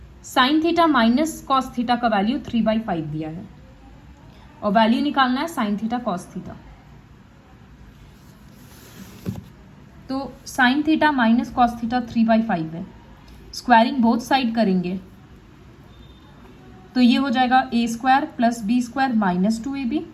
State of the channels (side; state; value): both; identical; correlation 1.00